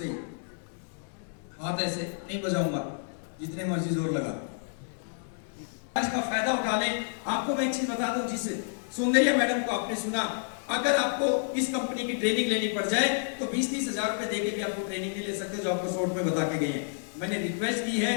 ही, हाथ ऐसे नहीं बजाऊंगा जितने मर्जी जोर लगा। इसका फायदा उठा लें। आपको मैं एक चीज बता दूं, जिस सौंदर्या मैडम को आपने सुना, अगर आपको इस कंपनी की ट्रेनिंग लेनी पड़ जाए तो 20-30 हजार रुपए देके भी आपको ट्रेनिंग नहीं ले सकते, जो आपको शॉर्ट में बता के गए हैं। मैंने रिक्वेस्ट की है,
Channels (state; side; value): silent; right; 58 dB below the other